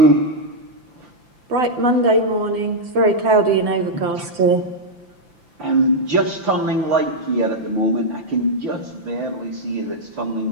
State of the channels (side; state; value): left; late; 5.9 ms